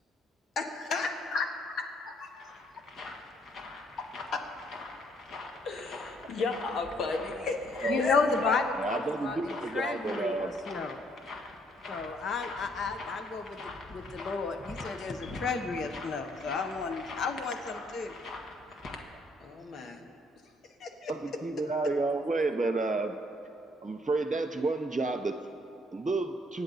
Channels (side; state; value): both; normal; correlation 0.67